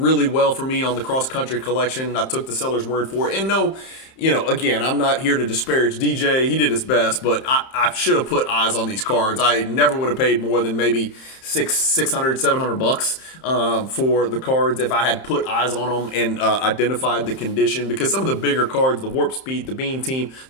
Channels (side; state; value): right; late; 31 ms